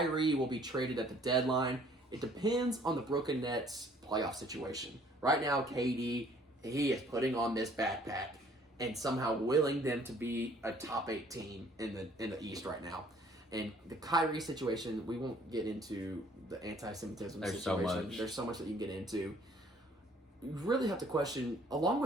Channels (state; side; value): normal; both; correlation 0.58